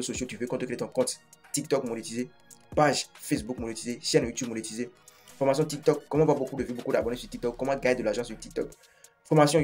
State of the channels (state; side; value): identical; both; correlation 1.00